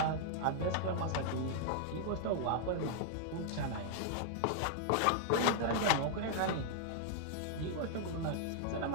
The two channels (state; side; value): different; both; correlation -0.01